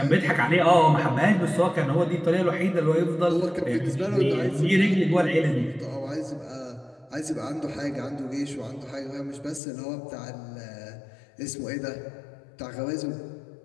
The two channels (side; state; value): right; drops out; at 9.6 s